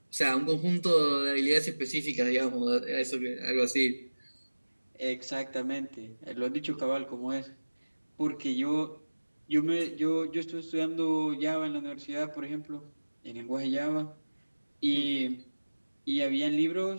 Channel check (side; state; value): both; inverted; correlation -1.00